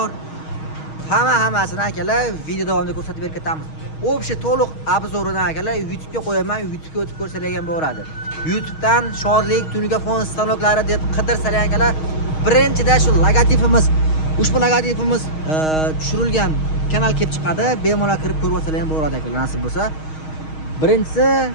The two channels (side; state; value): right; late; 6.4 ms